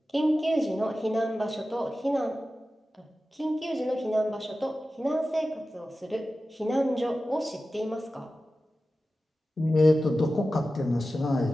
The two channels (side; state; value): both; normal; correlation 0.94